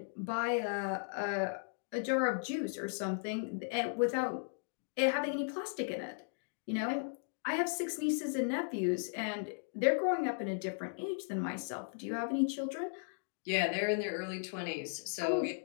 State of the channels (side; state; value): right; silent; digital silence